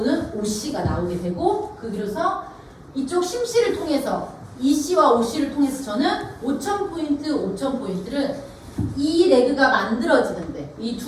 오씨가 나오게 되고 그래서 이쪽 심씨를 통해서 이씨와 오씨를 통해서 저는 5,000포인트를 이 레그가 만들어지는데 이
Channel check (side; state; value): both; identical; correlation 1.00